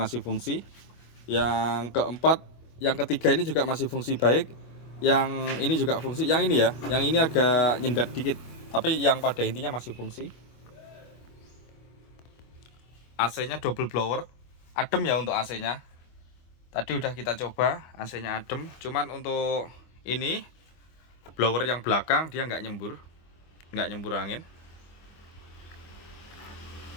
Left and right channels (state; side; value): late; right; 25 ms